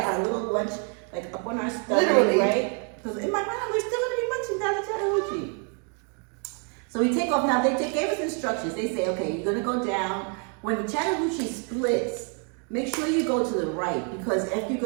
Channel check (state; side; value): quieter; left; 39.8 dB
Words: got our little lunch, like up on our stomach, Literally. right? Because in my mind, we're still gonna be munching down the Chattahoochee. So we take off. Now they gave us instructions. They say, okay, you're gonna go down. When the Chattahoochee splits, make sure you go to the right, because if you